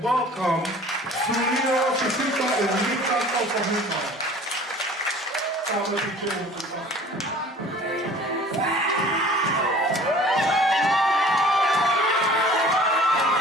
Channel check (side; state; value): both; normal; correlation 0.47